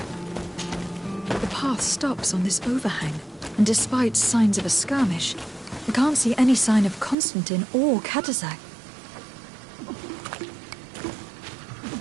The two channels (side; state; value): left; drops out; at 7.2 s